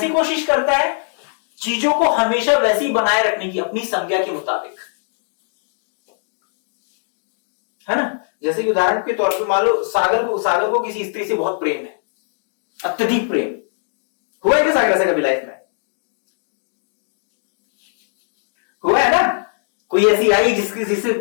कोशिश करता है? चीजों को हमेशा वैसी बनाए रखने की, अपनी संज्ञा के मुताबिक, है ना। जैसे कि उदाहरण के तौर पे मान लो सागर को किसी स्त्री से बहुत प्रेम है, अत्यधिक प्रेम। हुआ है क्या सागर ऐसा कभी लाइफ में? हुआ है ना। कोई ऐसी आई जिससे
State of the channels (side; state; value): right; silent; digital silence